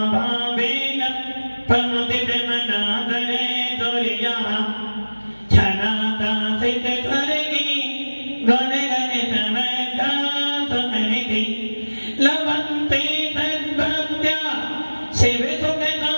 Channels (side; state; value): both; inverted; correlation -1.00